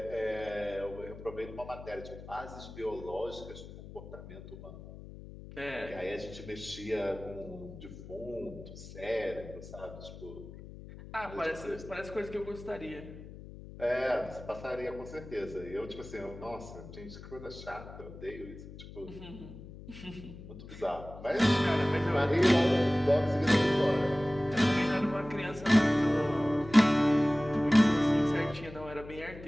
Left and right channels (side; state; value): left; noise; hum, 15 dB below the sound